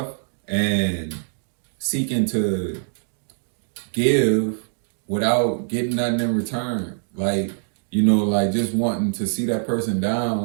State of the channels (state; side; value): silent; left; digital silence